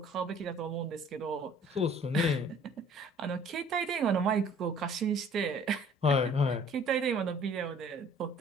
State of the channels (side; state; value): both; normal; correlation 0.54